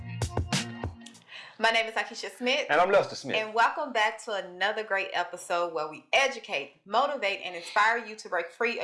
My name is Akeisha Smith. And I'm Lester Smith. And welcome back to another great episode where we educate, motivate, and inspire you to break free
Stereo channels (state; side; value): identical; both; correlation 1.00